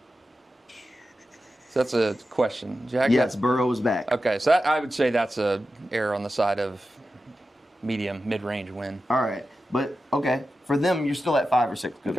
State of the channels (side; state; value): both; normal; correlation 0.92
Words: So that's a question. Jack, yes, Burrow is back. Okay, so I would say that's a error on the side of mid-range win. All right, but okay, for them, you're still at 5 or 6 good